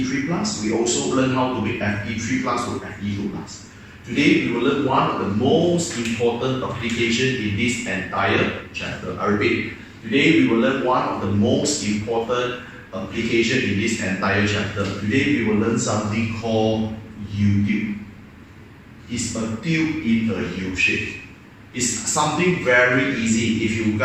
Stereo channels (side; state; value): both; identical; correlation 1.00